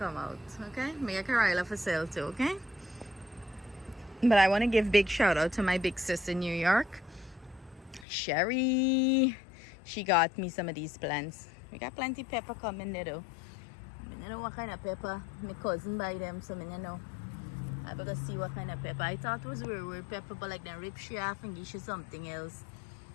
out, okay? Make a Karila for sale too, okay? But I want to give big shout out to my big sis in New York, Sherry. She got me some of these plants. We got plenty pepper coming there though. I don't know what kind of pepper. My cousin buy them, so I don't know. I better see what kind of pepper. I thought it was weird pepper, but like then rip she off and give you something else.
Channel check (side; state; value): right; drops out; at 8.1 s